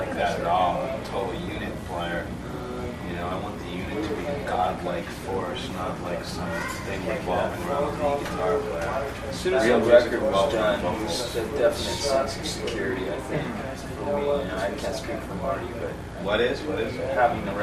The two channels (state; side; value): identical; both; correlation 1.00